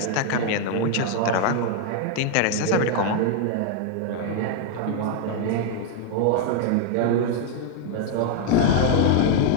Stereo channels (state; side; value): different; both; correlation 0.00